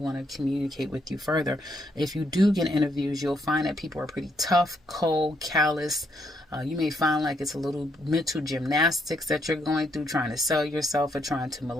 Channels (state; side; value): normal; both; correlation 0.75